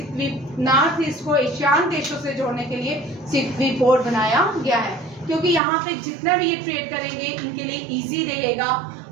नॉर्थ ईस्ट को एशियान देशों से जोड़ने के लिए सिक्वी पोर्ट बनाया गया है, क्योंकि यहाँ पे जितना भी ये ट्रेड करेंगे इनके लिए इजी रहेगा।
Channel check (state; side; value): drops out; left; at 5.6 s